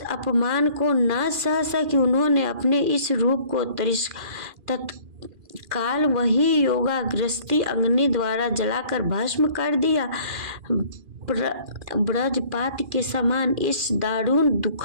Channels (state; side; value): late; left; 2.4 ms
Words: अपमान को न सह सकी। उन्होंने अपने इस रूप को तत्काल वही योगाग्रस्ती अग्नि द्वारा जलाकर भस्म कर दिया। ब्रजपात के समान इस दारुण